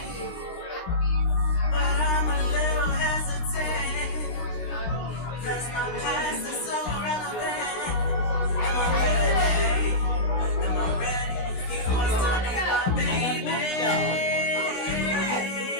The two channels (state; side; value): late; right; 16 ms